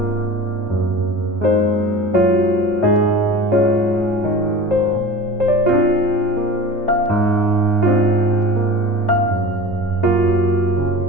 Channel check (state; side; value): normal; both; correlation 0.35